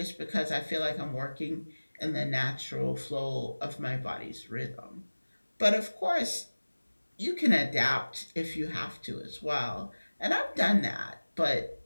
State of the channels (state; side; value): inverted; both; correlation -1.00